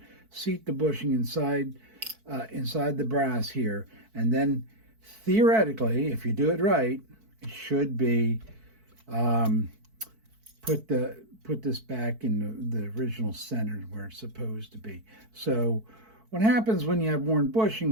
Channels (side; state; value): left; late; 4.5 ms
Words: seat the bushing inside the brass here, and then theoretically, if you do it right, it should be put this back in the original center where it's supposed to be. So what happens when you have worn